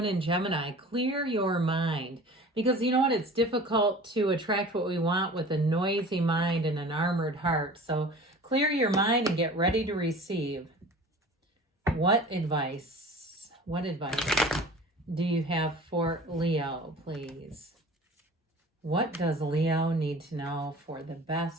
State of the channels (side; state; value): both; normal; correlation 0.42